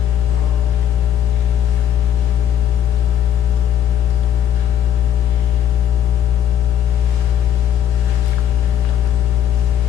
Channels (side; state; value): right; quieter; 9.9 dB